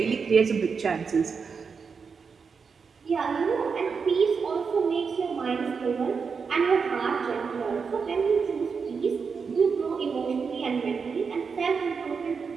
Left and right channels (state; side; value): quieter; left; 5.6 dB